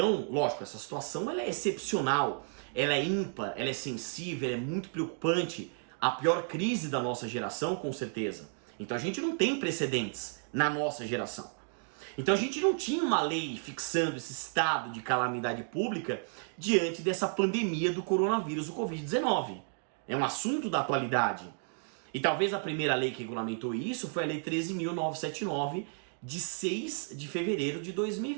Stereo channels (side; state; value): left; silent; 56 dB below the other